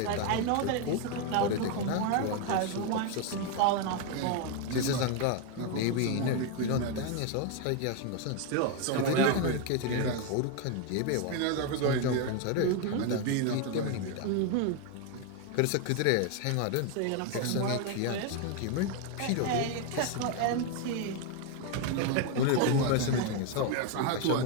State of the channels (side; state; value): both; different; correlation 0.01